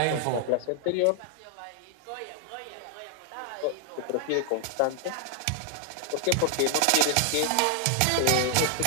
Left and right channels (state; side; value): different; both; correlation 0.00